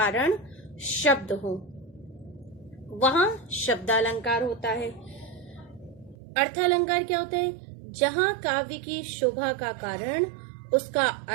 शब्द हो, वहां शब्दालंकार होता है। अर्थालंकार क्या होता है? जहां काव्य की शोभा का कारण उसका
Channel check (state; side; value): drops out; left; at 6.2 s